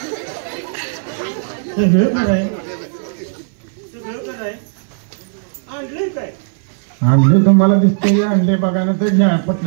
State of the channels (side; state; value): left; silent; 59 dB below the other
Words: सगळं कराय आणलंय काय आणले तुम्हाला दिसते आणले बघा ना तर घ्या